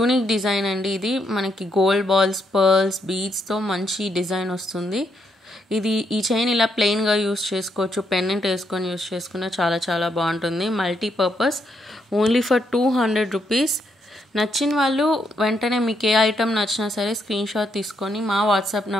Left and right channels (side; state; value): both; normal; correlation 0.77